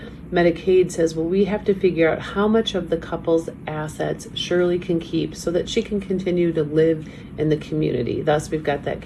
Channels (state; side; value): identical; both; correlation 1.00